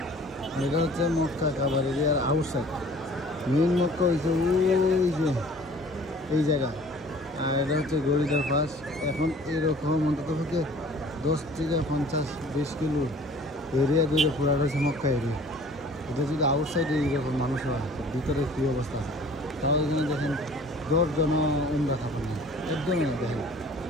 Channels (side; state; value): both; normal; correlation 0.50